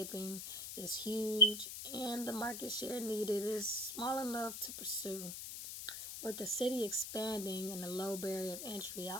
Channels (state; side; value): noise; left; hiss, 7 dB below the sound